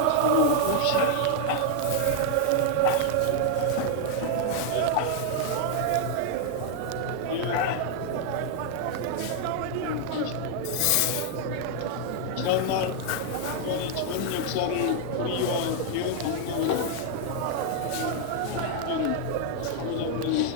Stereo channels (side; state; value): both; different; correlation 0.00